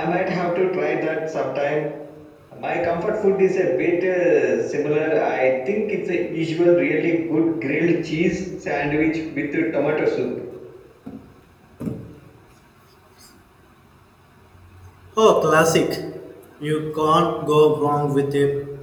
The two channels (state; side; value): identical; both; correlation 1.00